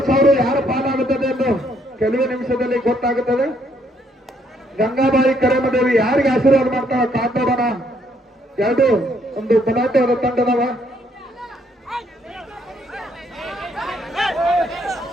ಯಾರ ಪಾಲಾಗುತ್ತದೆ ಎಂದು ಕೆಲವೇ ನಿಮಿಷದಲ್ಲಿ ಗೊತ್ತಾಗುತ್ತದೆ. ಗಂಗಾಬಾಯಿ ಕರೇಮದೇವಿ ಯಾರಿಗೆ ಆಶೀರ್ವಾದ ಮಾಡ್ತಾವ ಕಾತೋಡೋಣ. ಒಂದು ಬಲಾಟೆಯವರ ತಂಡದವ.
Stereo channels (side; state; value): both; normal; correlation 0.70